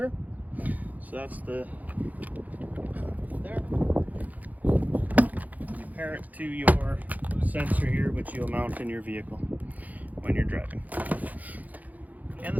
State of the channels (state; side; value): late; left; 0.079 ms